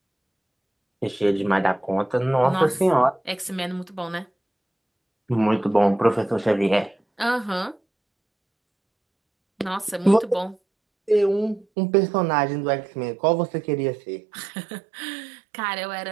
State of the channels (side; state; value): left; drops out; at 11.7 s